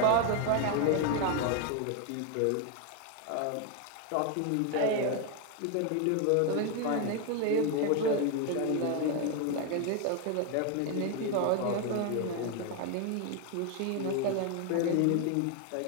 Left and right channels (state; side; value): different; both; correlation 0.01